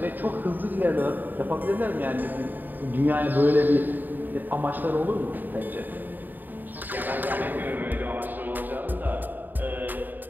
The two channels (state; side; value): late; left; 0.089 ms